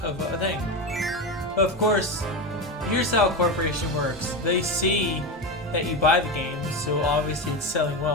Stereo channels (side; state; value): both; normal; correlation 0.18